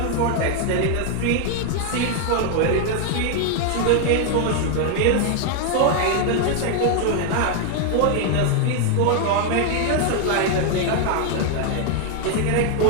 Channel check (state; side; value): different; both; correlation 0.00